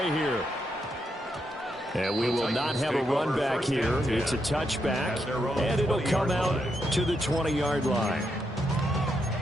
here. And we will not have a run back here. It's a touchback, and it'll come out to the 20-yard line.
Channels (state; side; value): normal; both; correlation 0.81